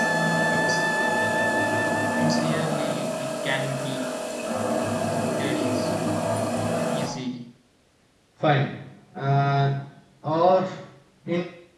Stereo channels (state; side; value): identical; both; correlation 1.00